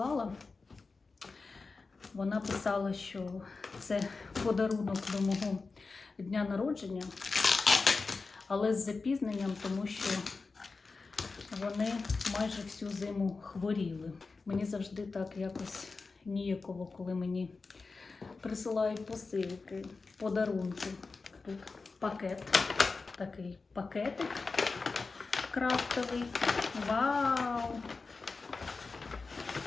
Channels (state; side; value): quieter; right; 4.1 dB